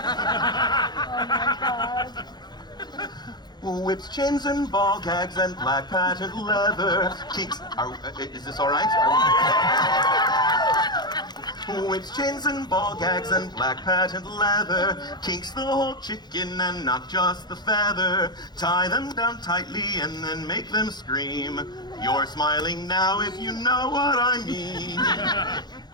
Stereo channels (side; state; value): right; late; 0.21 ms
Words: Whips, chains, and ball gags, and black patent leather. Kinks. Is this all right? Whips, chains, and ball gags, and black patent leather. Kinks the whole chicken and not just the feather. Tie them down tightly and then make them scream. You're smiling now if you know what I mean.